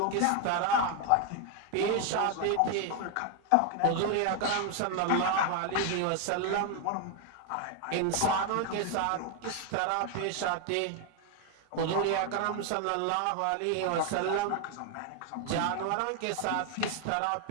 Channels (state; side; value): different; both; correlation 0.01